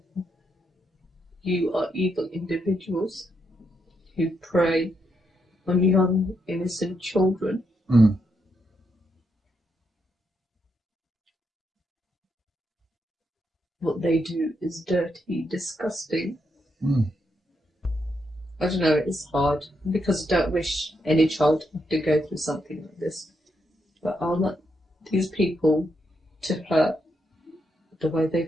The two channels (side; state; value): both; normal; correlation 0.80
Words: you are evil individuals who prey on young, innocent children? What they do is dirty, disgusting. I don't know, it's hard because I don't wish any child to go through something like this. But I want these people to hurt the way